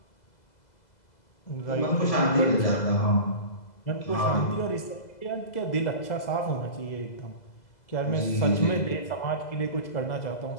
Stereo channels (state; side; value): late; right; 2.0 ms